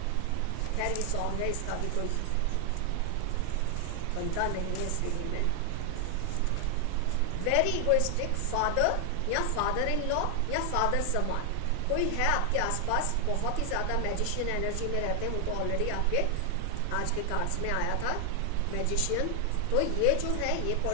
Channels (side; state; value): both; different; correlation 0.00